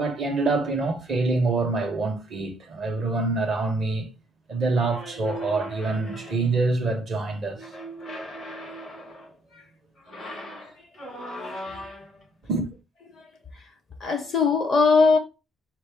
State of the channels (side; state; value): both; normal; correlation 0.68